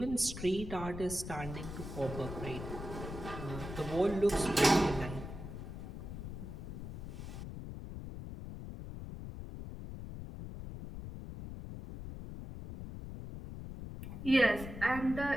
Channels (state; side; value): noise; left; rumble, 8 dB below the sound